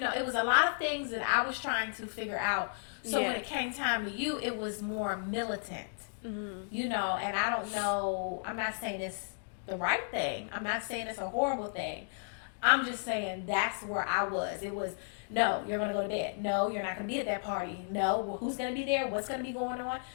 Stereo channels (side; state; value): right; silent; digital silence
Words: was a lot of things that I was trying to figure out. So when it came time to you, it was more militant. And I don't know. I'm not saying it's the right thing. I'm not saying it's a horrible thing. I'm just saying that's where I was. It was, no, you're going to go to bed. No, you're not going to be at that party. No, well, who's going to be there? What's going to be going on?